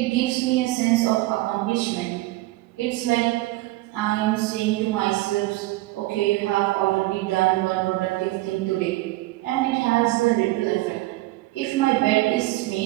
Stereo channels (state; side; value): quieter; left; 19.1 dB